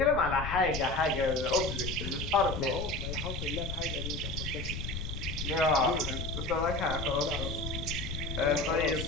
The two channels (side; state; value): left; noise; rumble, 6 dB below the sound